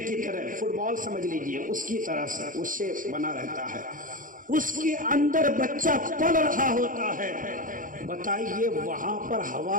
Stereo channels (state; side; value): late; left; 0.39 ms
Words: کی طرح، فٹ بال سمجھ لیجئے، اس کی طرح سے اس شیپ بنا رہتا ہے، اس کے اندر بچہ پل رہا ہوتا ہے۔ بتائیے وہاں پر